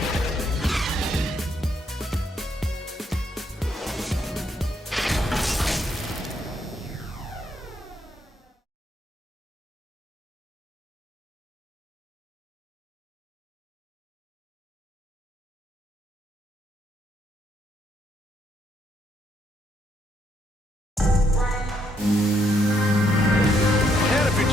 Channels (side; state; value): both; normal; correlation 0.73